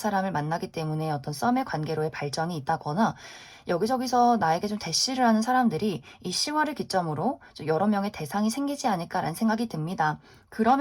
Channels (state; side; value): identical; both; correlation 1.00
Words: 만나기 때문에 어떤 썸의 관계로의 발전이 있다거나, 여기저기서 나에게 좀 대시를 하는 사람들이 이 10월을 기점으로 좀 여러 명의 대상이 생기지 않을까라는 생각이 듭니다.